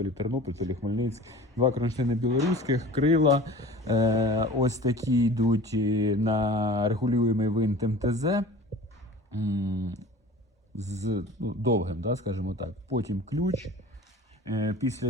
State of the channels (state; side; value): normal; both; correlation 0.41